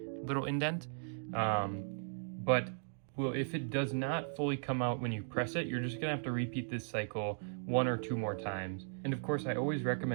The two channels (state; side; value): silent; left; digital silence